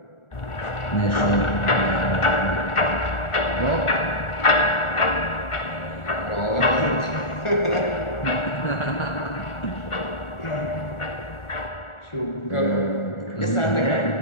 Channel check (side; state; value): right; late; 1.4 ms